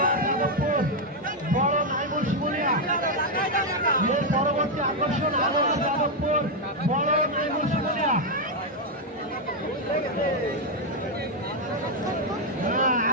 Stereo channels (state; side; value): normal; both; correlation 0.02